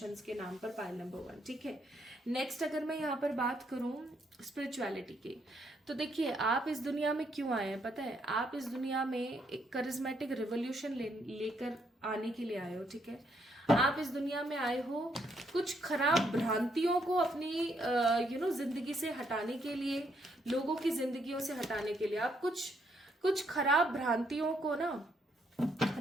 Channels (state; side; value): normal; both; correlation 0.73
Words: के नाम पर, पाइल नंबर 1, ठीक है। नेक्स्ट अगर मैं यहाँ पर बात करूं स्पिरिचुअलिटी की, तो देखिए आप इस दुनिया में क्यों आए हैं पता है। आप इस दुनिया में एक करिज्मेटिक रिवोल्यूशन लेकर आने के लिए आए हो, ठीक है। आप इस दुनिया में आए हो कुछ खराब भ्रांतियों को अपनी जिंदगी से हटाने के लिए, लोगों की जिंदगियों से हटाने के लिए। आप कुछ खराब भ्रांतियों को ना